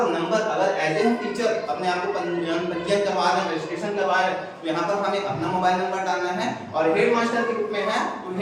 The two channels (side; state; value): both; identical; correlation 1.00